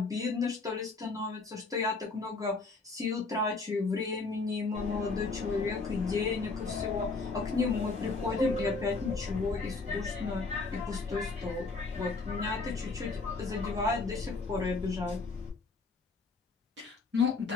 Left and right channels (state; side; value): quieter; right; 3.9 dB